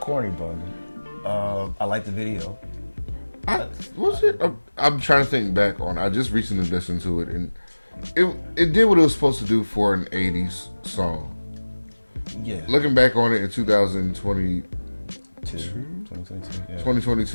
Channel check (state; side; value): inverted; both; correlation -1.00